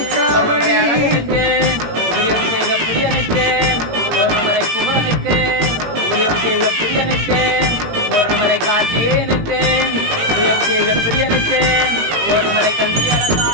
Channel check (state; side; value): late; left; 18 ms